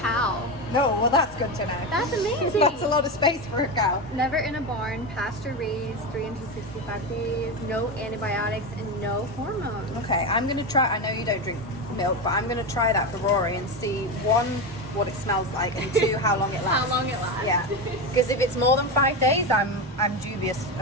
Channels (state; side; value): normal; both; correlation 0.17